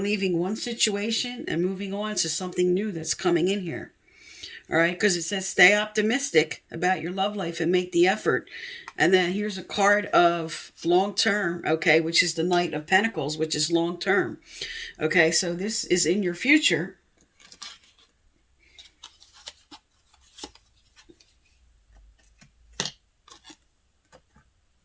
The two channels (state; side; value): identical; both; correlation 1.00